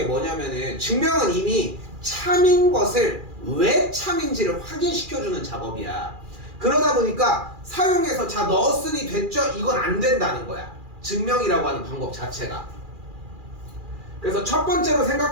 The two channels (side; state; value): left; late; 2.4 ms